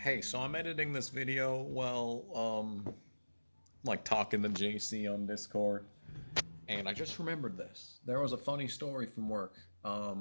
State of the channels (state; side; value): inverted; both; correlation -1.00